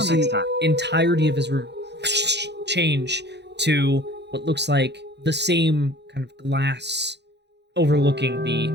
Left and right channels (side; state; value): left; late; 0.50 ms